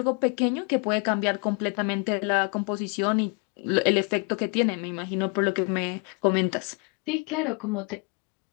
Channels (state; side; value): quieter; right; 34.4 dB